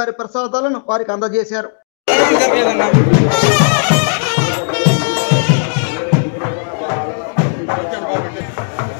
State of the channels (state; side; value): silent; right; 66 dB below the other